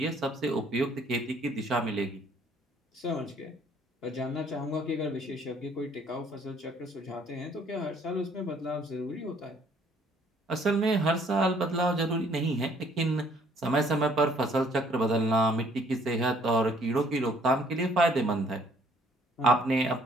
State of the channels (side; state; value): both; normal; correlation 0.61